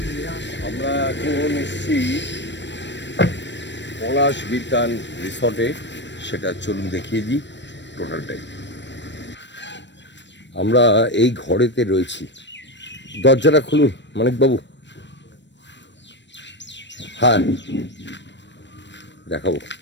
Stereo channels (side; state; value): right; late; 0.53 ms